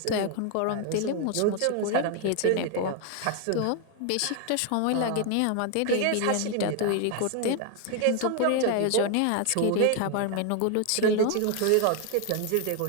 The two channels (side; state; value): both; different; correlation 0.01